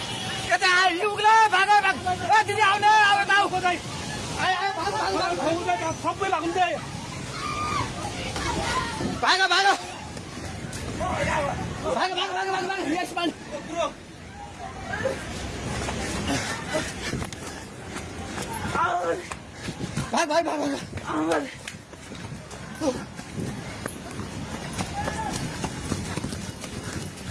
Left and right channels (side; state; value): both; identical; correlation 1.00